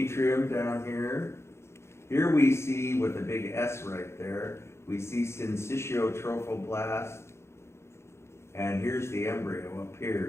down here. Here we see, with a big S right there, we see syncytiotrophoblast, and here's the embryo up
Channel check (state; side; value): late; right; 0.13 ms